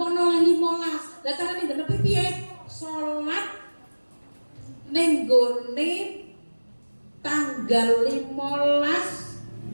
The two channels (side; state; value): both; inverted; correlation -1.00